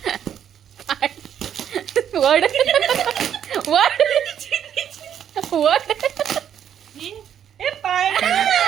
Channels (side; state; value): left; quieter; 9.3 dB